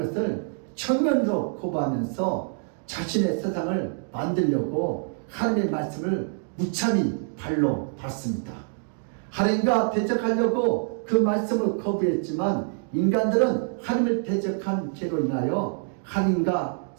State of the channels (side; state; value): left; silent; 56 dB below the other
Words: 정면으로 거부하면서 자신의 세상을 만들려고 하나님의 말씀을 무참히 발로 밟습니다. 하나님과 대적하려고 그 말씀을 거부했지만 인간들은 하나님을 대적한 죄로 인하여 하나님과